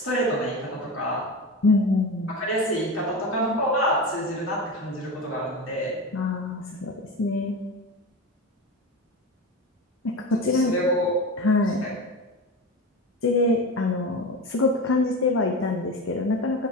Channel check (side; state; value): both; normal; correlation 0.25